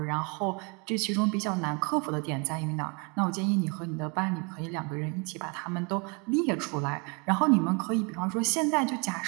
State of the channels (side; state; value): left; quieter; 31.9 dB